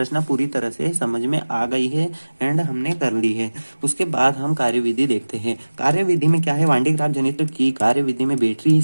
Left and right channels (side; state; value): both; inverted; correlation -1.00